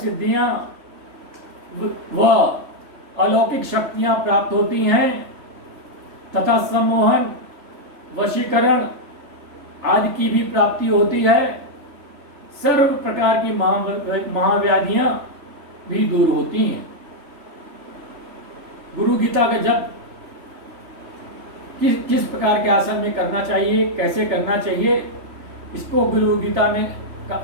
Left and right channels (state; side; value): late; left; 3.4 ms